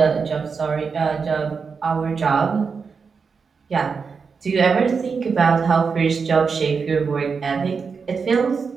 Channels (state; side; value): quieter; left; 5.4 dB